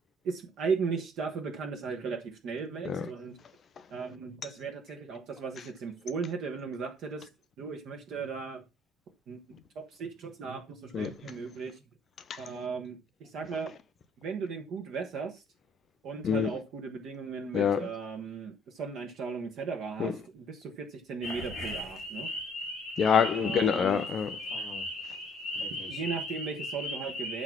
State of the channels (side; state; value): both; normal; correlation 0.59